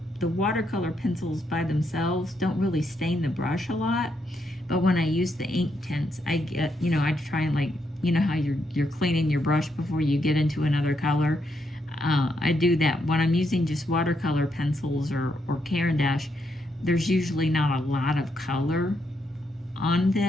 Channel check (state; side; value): normal; both; correlation 0.79